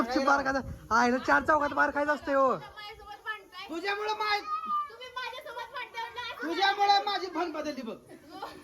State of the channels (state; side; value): identical; both; correlation 1.00